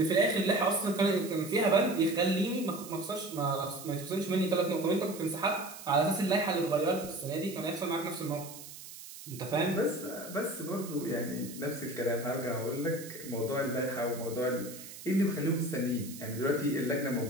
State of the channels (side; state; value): right; noise; hiss, 14 dB below the sound